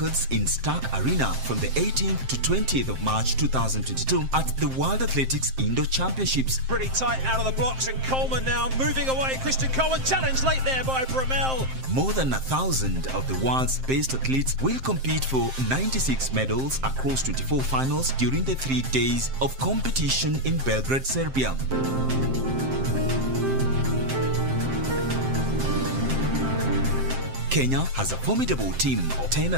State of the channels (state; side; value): late; left; 7.6 ms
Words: in Stark Arena from the 18th to 20th of March 2022 at the World Athletics Indoor Championships. Pretty tight out of the blocks, and Coleman now moving away. Christian Coleman challenged late there by Bromell. More than 1,000 of the world's best athletes will compete for 96 medals across 24 finals during the 3 days of competition in Belgrade, Serbia. Kenya has a formidable team of 10